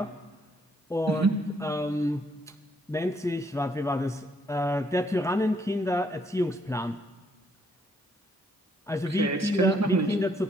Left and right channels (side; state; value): both; normal; correlation 0.70